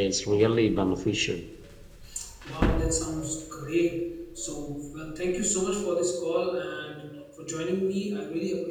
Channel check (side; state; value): both; identical; correlation 1.00